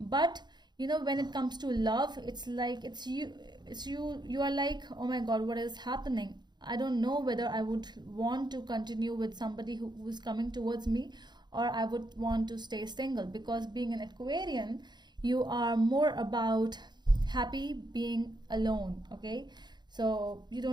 but you know, when it comes to love, it's like you are like, oh my god, what is happening? I don't know whether I would want to continue with somebody who's coming towards me, or I would want to stay single, because being an Aquarian, you are more about happy being alone. Okay, so you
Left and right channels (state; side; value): late; left; 0.21 ms